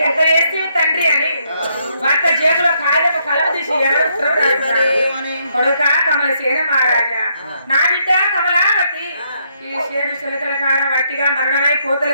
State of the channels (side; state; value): both; inverted; correlation -0.74